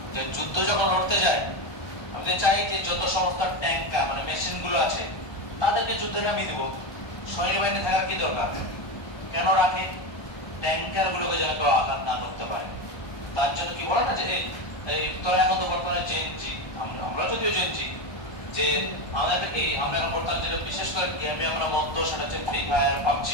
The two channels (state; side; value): late; right; 1.2 ms